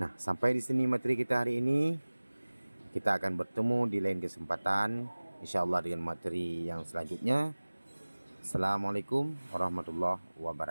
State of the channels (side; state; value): both; inverted; correlation -1.00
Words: sampai di sini materi kita hari ini. Kita akan bertemu di lain kesempatan, insyaallah dengan materi yang selanjutnya. Assalamualaikum warahmatullahi